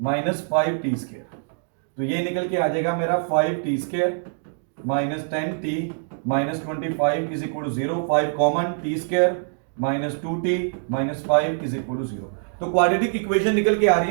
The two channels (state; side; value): silent; left; digital silence